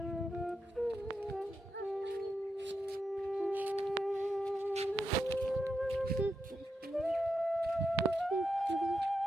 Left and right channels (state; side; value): normal; both; correlation 0.85